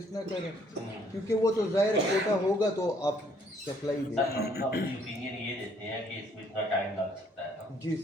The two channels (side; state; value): both; normal; correlation 0.64